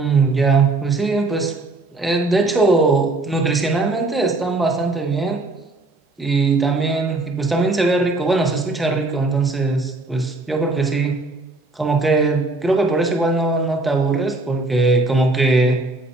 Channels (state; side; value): quieter; left; 3.1 dB